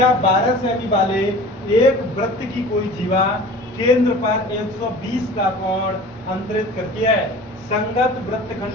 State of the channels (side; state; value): both; normal; correlation 0.41